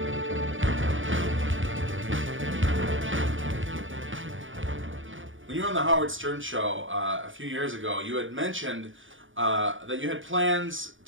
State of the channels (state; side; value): late; left; 0.57 ms